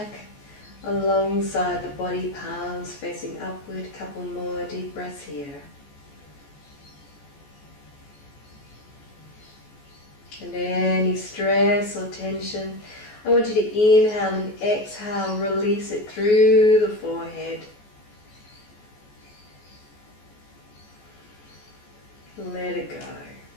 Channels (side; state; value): right; late; 14 ms